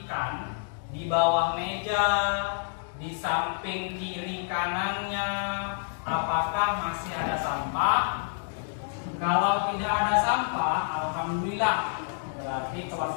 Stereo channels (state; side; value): silent; right; digital silence